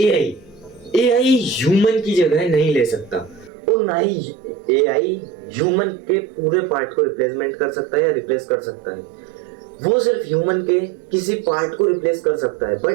एआई ह्यूमन की जगह नहीं ले सकता और ना ही एआई ह्यूमन के पूरे पार्ट को रिप्लेसमेंट कर सकता है या रिप्लेस कर सकता है। वो सिर्फ ह्यूमन के किसी पार्ट को रिप्लेस कर सकता है,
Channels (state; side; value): drops out; left; at 3.5 s